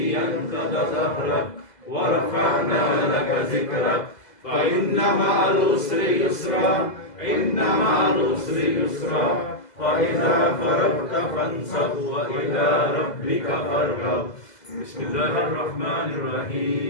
أنقض ظهرك ورفعنا لك ذكرك فإن مع العسر يسرا إن مع العسر يسرا فإذا فرغت فانصب وإلى ربك فارغب. بسم الله الرحمن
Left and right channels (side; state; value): right; late; 2.0 ms